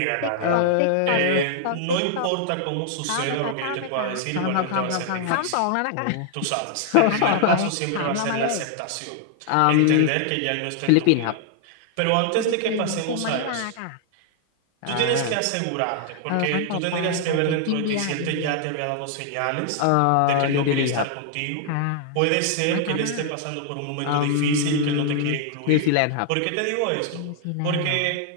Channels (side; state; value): both; different; correlation 0.00